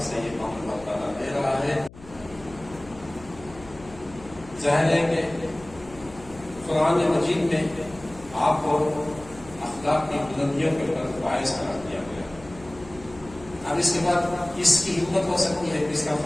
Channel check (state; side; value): noise; left; hum, 19 dB below the sound